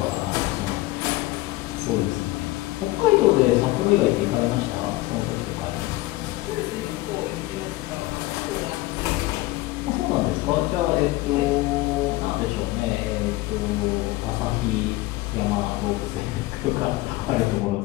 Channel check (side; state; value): right; quieter; 18.9 dB